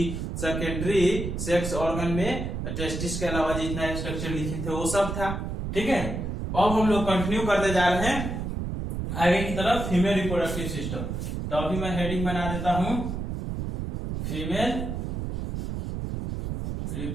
सेकेंडरी सेक्स ऑर्गन में टेस्टिस के अलावा जितना स्ट्रक्चर लिखे थे वो सब था। ठीक है, अब हम लोग कंटिन्यू करते जा रहे हैं आगे की तरफ फीमेल रिप्रोडक्टिव सिस्टम। तो अभी मैं हेडिंग बना देता हूं, फीमेल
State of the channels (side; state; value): right; noise; rumble, 4 dB below the sound